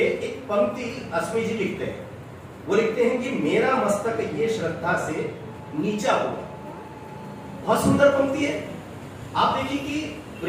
पंक्ति अस्मी जी लिखते हैं, वो लिखते हैं कि मेरा मस्तक ये श्रद्धा से नीचा हो। बहुत सुंदर पंक्ति है। आप देखिए कि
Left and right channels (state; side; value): identical; both; correlation 1.00